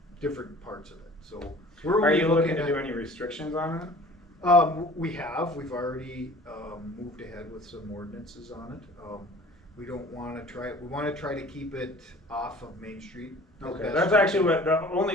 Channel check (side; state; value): both; normal; correlation 0.47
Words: different parts of it, so. We're Are only you looking to at- do any restrictions on it? We've already moved ahead with some ordinances on it. We don't wanna we wanna try to keep it off of Main Street. as Okay, best that's we actually can. what, the